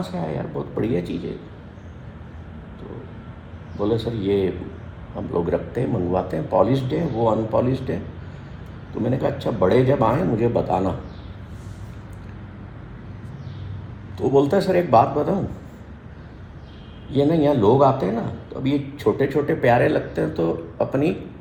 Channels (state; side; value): identical; both; correlation 1.00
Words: से आया यार, बहुत बढ़िया चीज़ है। तो बोले सर ये हम लोग रखते हैं, मंगवाते हैं, पॉलिश्ड है, वो अनपॉलिश्ड है। तो मैंने कहा अच्छा बड़े जब आए मुझे बताना। तो बोलता है सर एक बात बताऊं, ये ना यहाँ लोग आते हैं ना, तो अब ये छोटे छोटे प्यारे लगते हैं तो अपनी